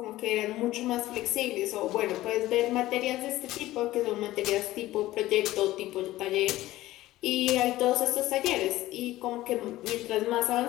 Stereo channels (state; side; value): quieter; right; 16.3 dB